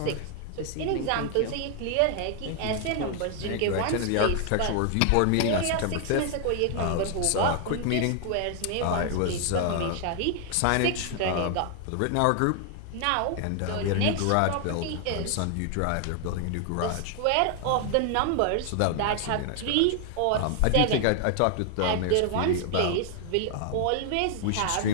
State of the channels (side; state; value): both; different; correlation 0.00